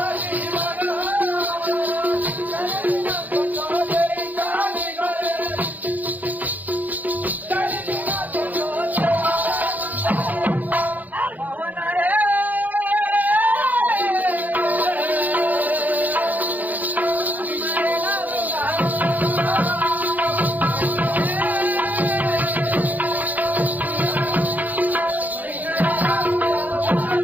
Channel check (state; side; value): late; left; 0.081 ms